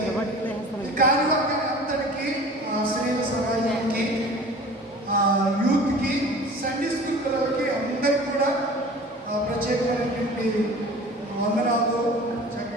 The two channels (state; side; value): normal; both; correlation 0.42